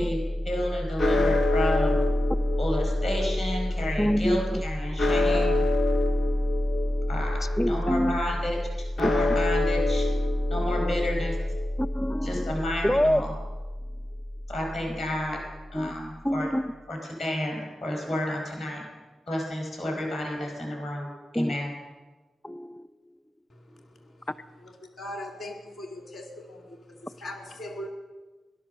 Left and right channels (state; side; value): normal; both; correlation 0.92